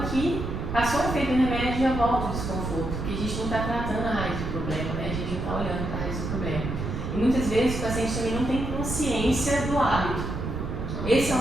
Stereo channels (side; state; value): right; noise; rumble, 4 dB below the sound